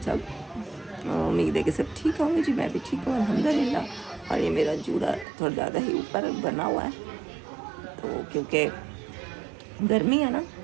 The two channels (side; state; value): left; drops out; at 5.2 s